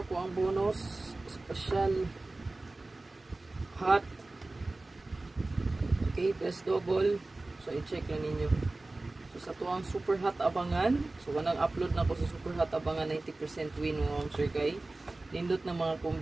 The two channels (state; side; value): quieter; left; 3.0 dB